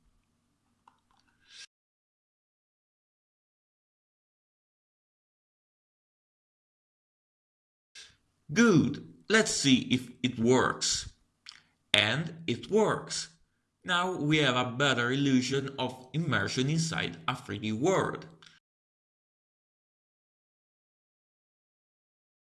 Good, let's see if it works. And it works. Now we have a better illusion of immersion inside a 3D world.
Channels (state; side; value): identical; both; correlation 1.00